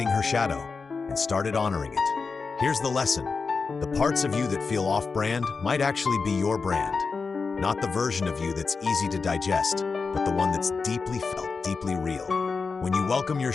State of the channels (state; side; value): quieter; right; 4.7 dB